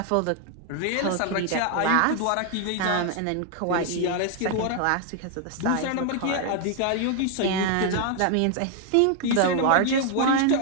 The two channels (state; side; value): different; both; correlation 0.00